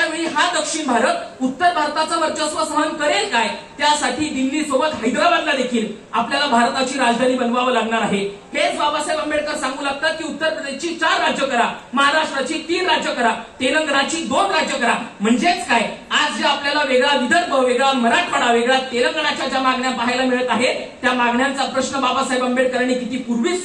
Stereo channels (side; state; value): both; identical; correlation 1.00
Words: वेळी हा दक्षिण भारत उत्तर भारताचं वर्चस्व सहन करेल काय? त्यासाठी दिल्ली सोबत हैदराबादला देखील आपल्याला भारताची राजधानी बनवावं लागणार आहे. हेच बाबासाहेब आंबेडकर सांगू लागतात की उत्तर प्रदेशची 4 राज्य करा, महाराष्ट्राची 3 राज्य करा, तेलंगणाची 2 राज्य करा. म्हणजेच काय, आज जे आपल्याला वेगळा विदर्भ, वेगळा मराठवाडा, वेगळा तेलंगणाच्या ज्या मागण्या पाहायला मिळत आहेत त्या मागण्यांचा प्रश्न बाबासाहेब आंबेडकरांनी किती पूर्वीच